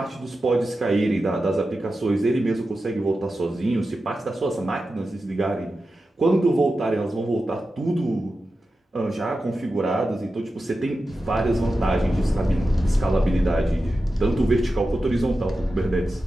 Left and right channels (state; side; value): normal; both; correlation 0.92